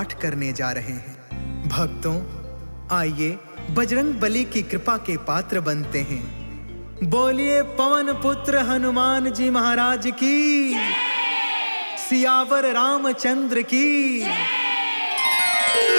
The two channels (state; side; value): inverted; both; correlation -1.00